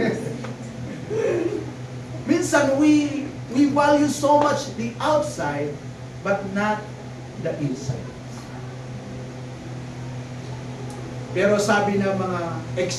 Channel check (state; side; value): identical; both; correlation 1.00